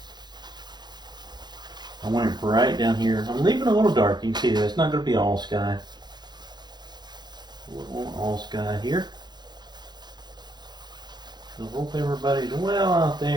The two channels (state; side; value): late; left; 0.21 ms